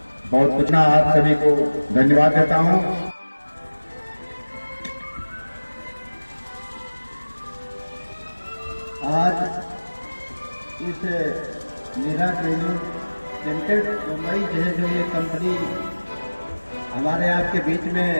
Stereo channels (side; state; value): both; inverted; correlation -1.00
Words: बहुत कुछ ना आप सभी को धन्यवाद देता हूं। आज इस मीरा ट्रेनिंग लिमिटेड मुंबई जो ये कंपनी हमारे आपके बीच में